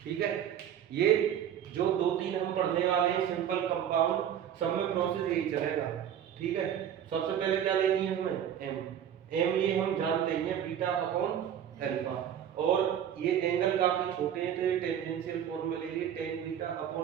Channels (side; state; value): left; quieter; 9.6 dB